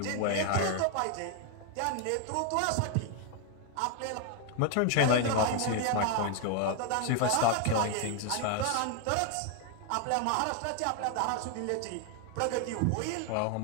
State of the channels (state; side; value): different; both; correlation 0.00